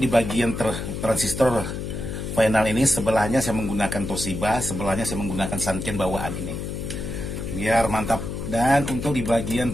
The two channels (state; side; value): noise; left; hum, 5 dB below the sound